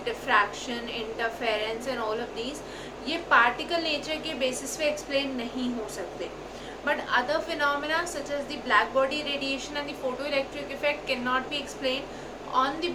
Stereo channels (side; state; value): both; identical; correlation 1.00